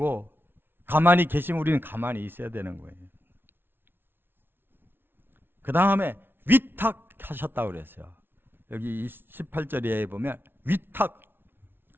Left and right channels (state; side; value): late; left; 0.11 ms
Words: 가만히 계시면 우리는 가만히 있어야 되는 거예요. 그 다음에 위탁하셨다고 그랬어요. 여기 18절에 보면 위탁,